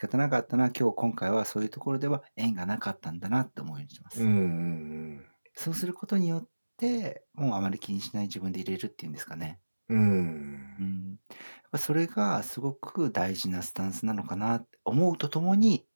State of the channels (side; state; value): both; inverted; correlation -1.00